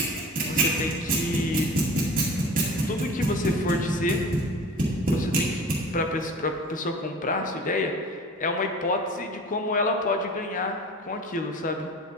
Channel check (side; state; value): both; normal; correlation 0.40